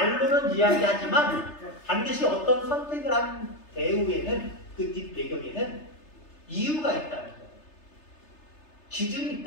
이야기하지만 반드시 어떤 선택을 한 배후에는 그 뒷배경에는 이유가 있다는 거예요. 기준이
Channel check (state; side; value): late; right; 3.3 ms